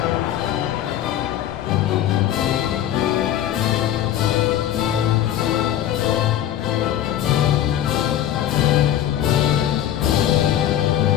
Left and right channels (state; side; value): quieter; right; 11.5 dB